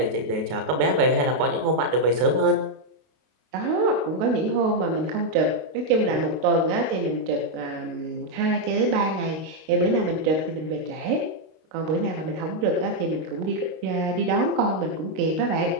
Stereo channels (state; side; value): late; left; 32 ms